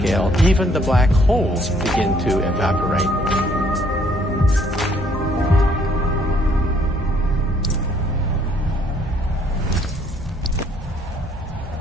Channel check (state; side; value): normal; both; correlation 0.64